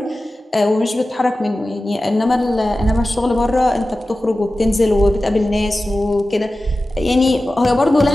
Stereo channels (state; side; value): normal; both; correlation 0.95